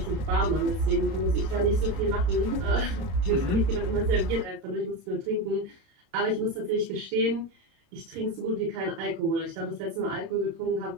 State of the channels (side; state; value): left; late; 30 ms